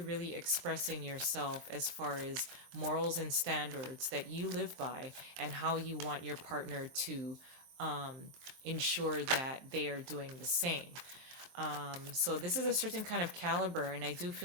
really expressing yourself as far as morals and standards that you live by and how you want your partner to ensure that they are doing the same. So this is a certain kind of caliber, and I do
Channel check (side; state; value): left; late; 23 ms